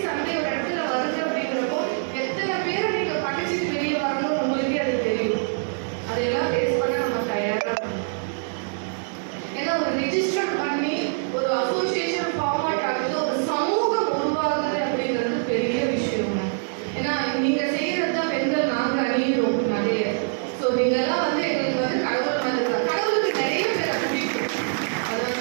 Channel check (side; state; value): left; silent; 62 dB below the other